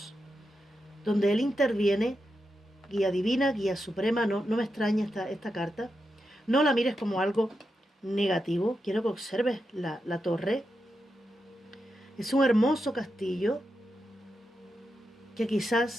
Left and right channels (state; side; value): normal; both; correlation 0.87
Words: Donde Él interviene, guía divina, guía suprema. No me extraña esta carta. No la mires como algo negativo. Quiero que observes la torre. Es un hermoso castillo que